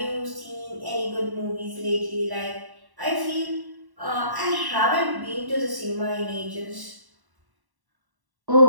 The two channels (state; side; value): late; left; 1.1 ms